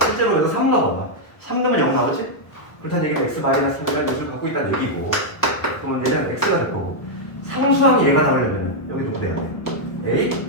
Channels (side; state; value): right; late; 1.1 ms